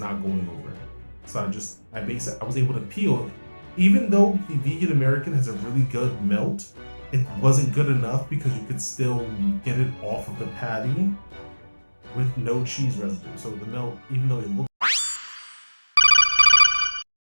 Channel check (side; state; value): both; inverted; correlation -1.00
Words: going over. So I was able to peel. Even though the vegan American has a really good melt, it wasn't good enough because you could still get it off of the patty with no cheese residue. So the melt, even though it looked